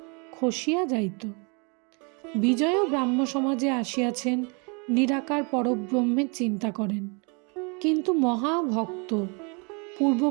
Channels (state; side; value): quieter; left; 33.1 dB